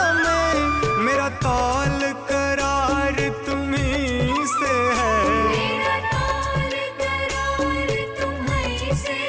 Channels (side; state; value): both; identical; correlation 1.00